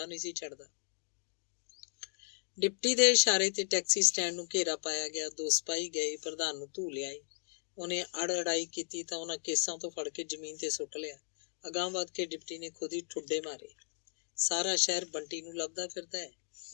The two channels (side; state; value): right; silent; digital silence